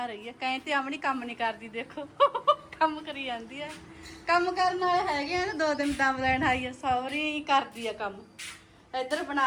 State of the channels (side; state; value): both; identical; correlation 1.00